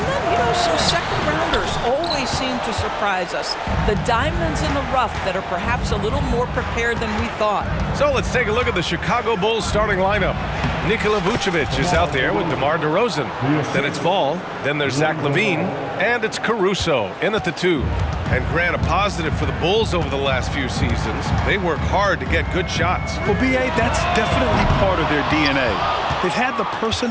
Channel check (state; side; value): identical; both; correlation 1.00